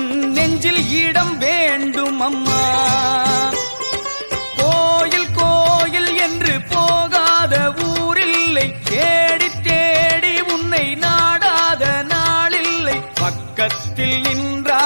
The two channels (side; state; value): both; inverted; correlation -1.00